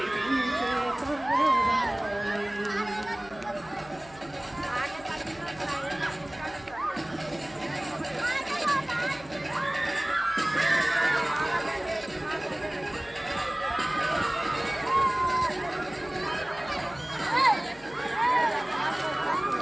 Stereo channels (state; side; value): noise; left; hum, 23 dB below the sound